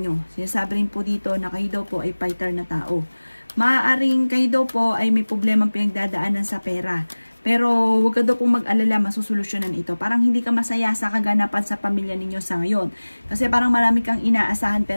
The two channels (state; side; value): inverted; both; correlation -1.00